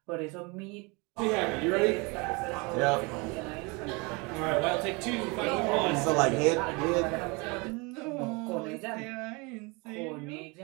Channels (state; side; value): quieter; left; 28.2 dB